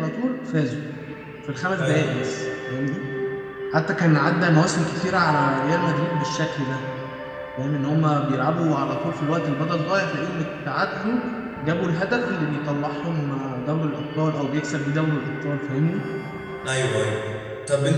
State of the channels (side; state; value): both; identical; correlation 1.00